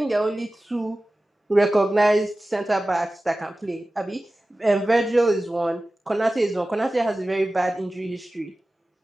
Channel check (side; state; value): both; normal; correlation 0.96